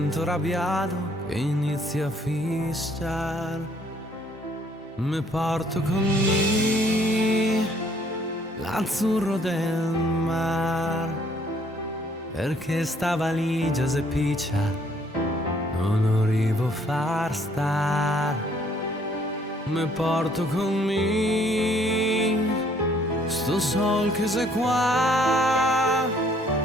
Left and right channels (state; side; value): normal; both; correlation 0.63